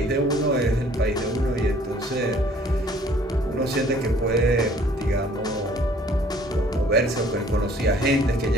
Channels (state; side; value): normal; both; correlation 0.57